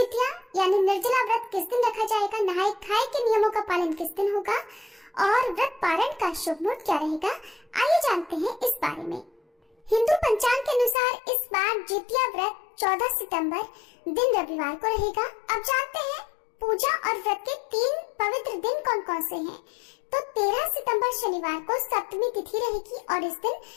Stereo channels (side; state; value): right; drops out; at 11.0 s